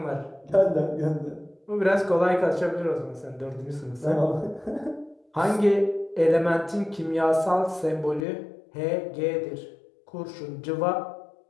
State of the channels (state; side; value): drops out; right; at 8.2 s